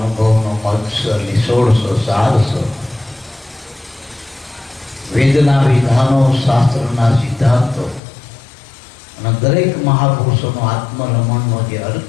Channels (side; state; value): right; drops out; at 8.0 s